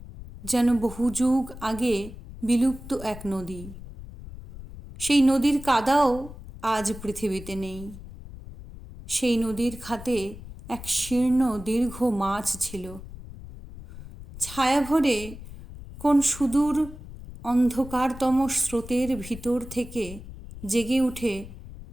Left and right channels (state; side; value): noise; left; rumble, 14 dB below the sound